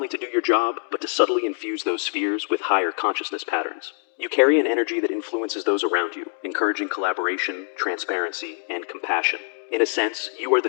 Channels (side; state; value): right; silent; 62 dB below the other